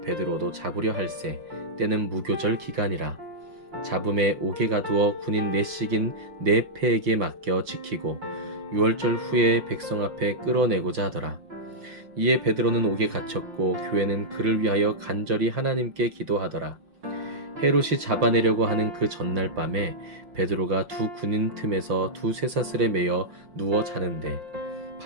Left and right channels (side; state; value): left; late; 5.6 ms